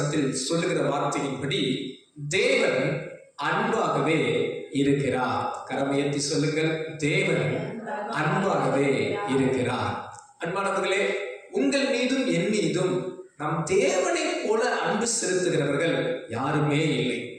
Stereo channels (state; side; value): identical; both; correlation 1.00